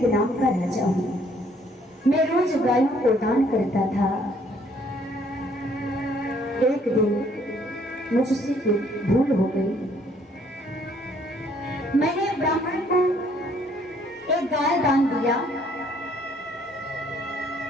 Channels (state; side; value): normal; both; correlation 0.63